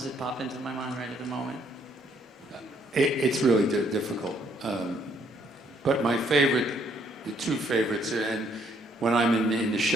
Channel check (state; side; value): normal; both; correlation 0.67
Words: that pop into my mind right at the moment. It's really difficult. But my favorite, the 2 favorites, and when I'm in the